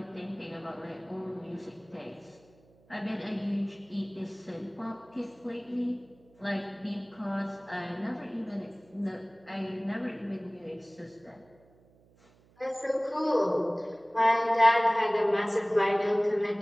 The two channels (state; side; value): noise; right; hum, 30 dB below the sound